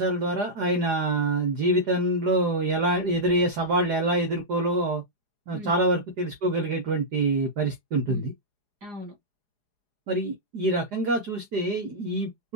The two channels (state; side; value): late; left; 4.8 ms